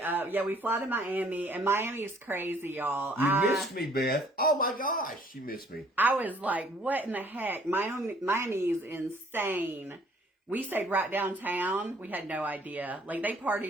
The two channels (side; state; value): both; normal; correlation 0.60